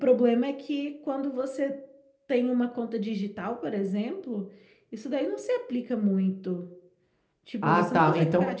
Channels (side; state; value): both; identical; correlation 1.00